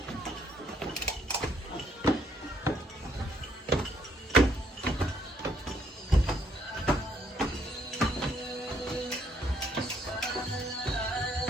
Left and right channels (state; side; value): normal; both; correlation 0.69